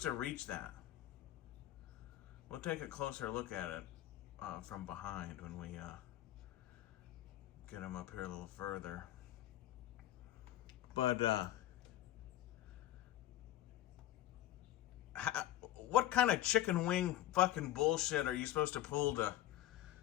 to reach that? We'll take a closer look at it from behind when we get him up here a little further. But what kind of chicken wing fucking bullshit are you supposed to pull to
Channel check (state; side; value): quieter; right; 13.6 dB